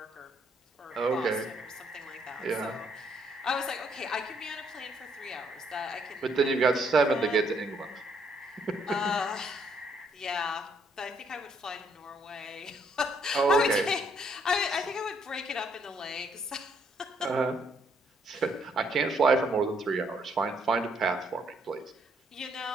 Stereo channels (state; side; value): normal; both; correlation 0.70